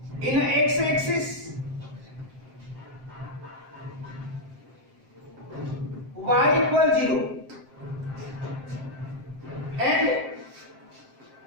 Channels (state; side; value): late; left; 7.6 ms